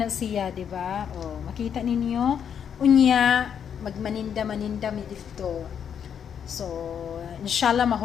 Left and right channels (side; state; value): right; quieter; 8.1 dB